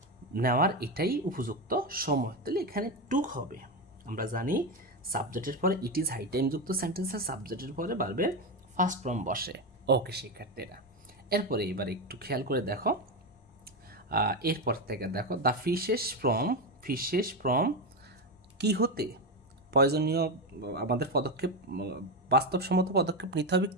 নেওয়ার এটাই উপযুক্ত সময়। তাহলে এখানে টুক হবে, আমরা জানি সাবজেক্টের পরে ইট ইজ হাই টাইম যুক্ত সেন্টেন্সের সাবজেক্টের পরে ভার্বের ফার্স্ট ফর্ম বসে। ওকে শিক্ষার্থীরা, এরপরে এবার একটু খেয়াল করে দেখো, এরপর থেকে দেখো দ্য ফিশেস ফ্রম কি হতে, প্রয়োজনীয় আমাদের পদক্ষেপ, বাস্তবসম্মত পদক্ষেপ নিতে হবে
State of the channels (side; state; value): both; normal; correlation 0.13